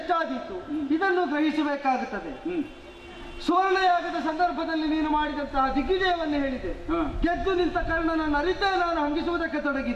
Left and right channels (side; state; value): both; identical; correlation 1.00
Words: ಎಷ್ಟಾದೀತು ಇದನ್ನು ಗ್ರಹಿಸಬೇಕಾಗುತ್ತದೆ. ಸುವರ್ಣಯಾಗದ ಸಂದರ್ಭದಲ್ಲಿ ನೀನು ಮಾಡಿದಂತಹ ದಿಗ್ವಿಜಯವನ್ನು ಹೇಳಿದೆ. ಗೆದ್ದು ನಿಂತ ಕರ್ಣನನ್ನು ಅರಿತೇ ನಾನು ಹಂಗಿಸುವುದಕ್ಕೆ